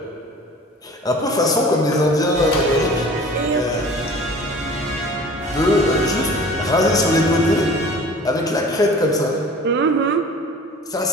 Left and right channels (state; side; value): normal; both; correlation 0.43